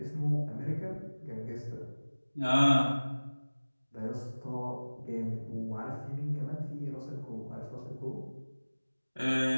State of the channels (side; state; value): both; inverted; correlation -1.00